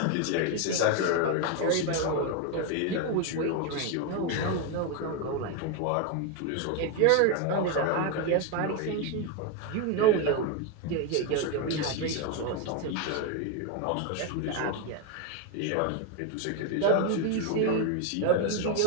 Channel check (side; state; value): both; different; correlation 0.02